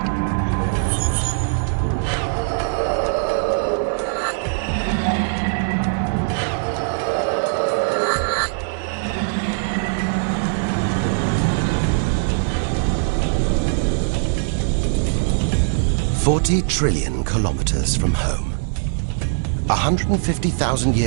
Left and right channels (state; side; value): silent; left; digital silence